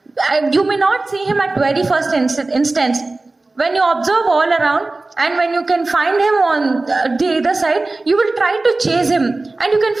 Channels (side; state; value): left; quieter; 3.2 dB